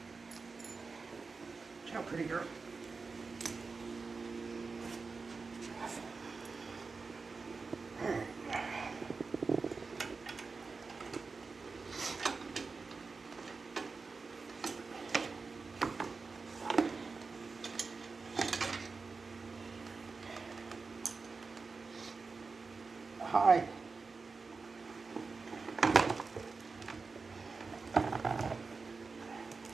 Ciao, pretty girl. Hi.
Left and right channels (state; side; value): quieter; left; 4.4 dB